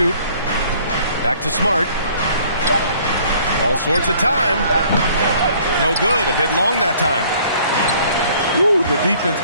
Back to Smart. All sorts of time. No good. A bit long that time. Ooh, the defense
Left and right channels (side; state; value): both; inverted; correlation -0.57